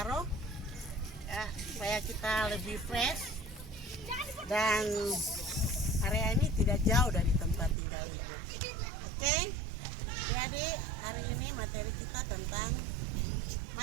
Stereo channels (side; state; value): left; drops out; at 7.8 s